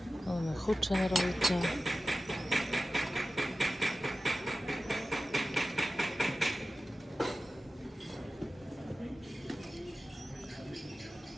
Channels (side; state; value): both; normal; correlation 0.95